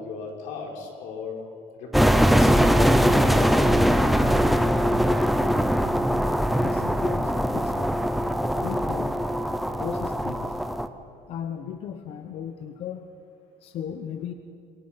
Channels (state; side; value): normal; both; correlation 0.93